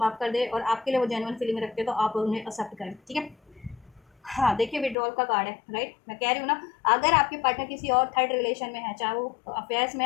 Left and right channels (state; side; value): drops out; right; at 5.0 s